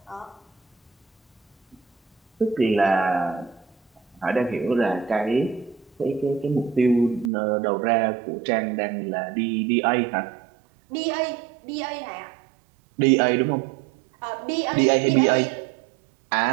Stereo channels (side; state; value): left; drops out; at 7.3 s